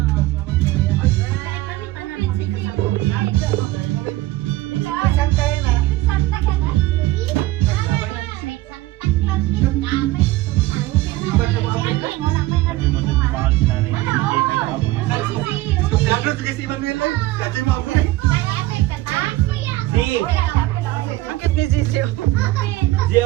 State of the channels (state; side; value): quieter; left; 17.5 dB